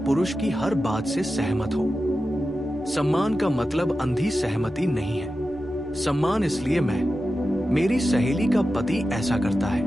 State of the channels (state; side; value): normal; both; correlation 0.92